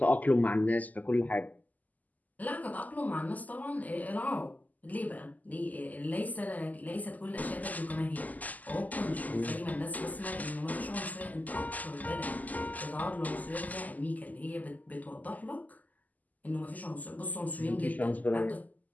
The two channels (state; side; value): late; right; 0.080 ms